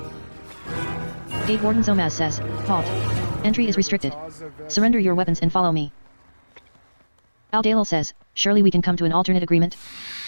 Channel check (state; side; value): inverted; both; correlation -1.00